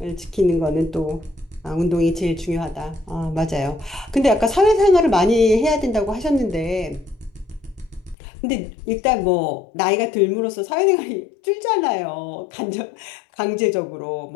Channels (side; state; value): right; drops out; at 8.2 s